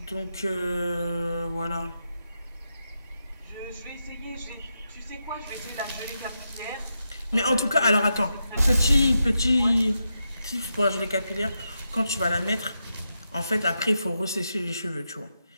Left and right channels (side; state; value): both; inverted; correlation -0.86